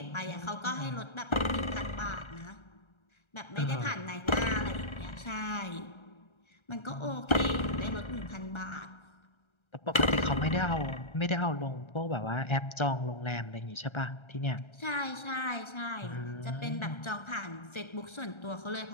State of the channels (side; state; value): right; late; 1.3 ms